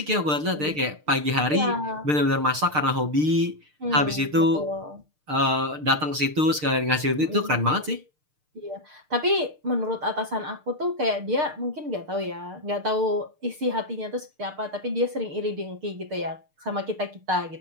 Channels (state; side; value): late; left; 6.6 ms